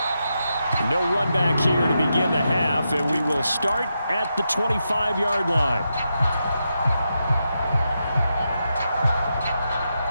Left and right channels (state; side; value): inverted; both; correlation -0.86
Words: No run back here to begin the half, and we will start at the 25-yard line.